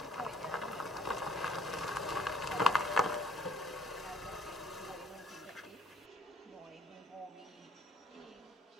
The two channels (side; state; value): both; normal; correlation 0.58